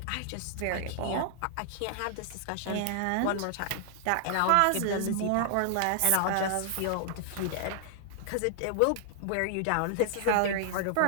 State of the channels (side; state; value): both; different; correlation 0.00